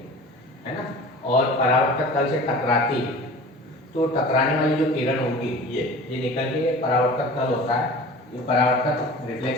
है ना, और परावर्तक तल से टकराती है, तो टकराने वाली जो किरण होगी ये निकल के परावर्तक तल होता है, ये परावर्तक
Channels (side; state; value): both; normal; correlation 0.40